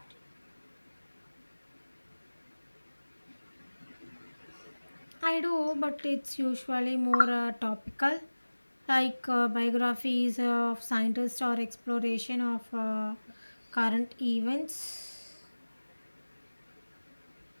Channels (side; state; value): both; inverted; correlation -1.00